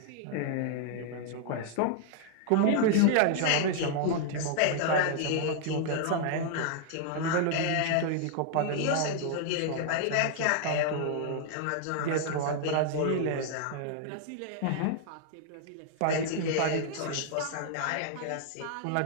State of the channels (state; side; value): different; both; correlation 0.00